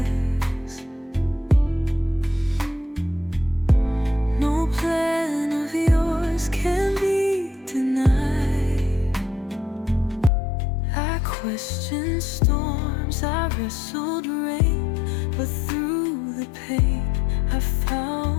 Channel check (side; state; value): right; drops out; at 10.3 s